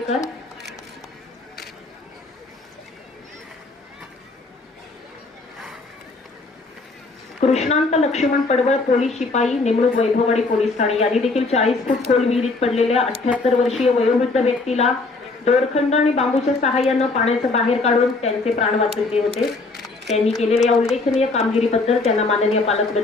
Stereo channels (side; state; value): right; quieter; 3.5 dB